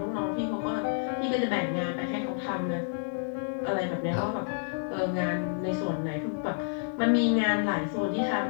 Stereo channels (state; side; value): silent; right; digital silence